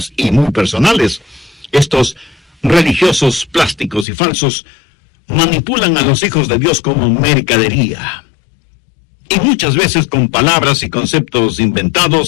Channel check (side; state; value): right; drops out; at 4.0 s